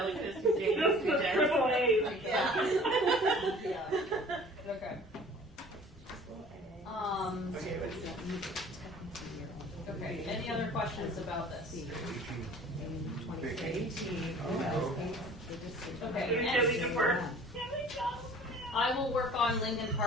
2 James, This 2 is Jens. triple A's. Yeah. Okay. Okay, any other questions about this? Okay, and I will work on Lincoln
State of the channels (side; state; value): both; normal; correlation 0.48